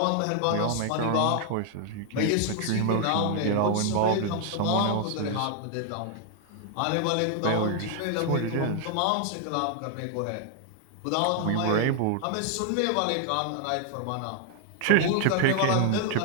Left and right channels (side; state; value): both; different; correlation 0.00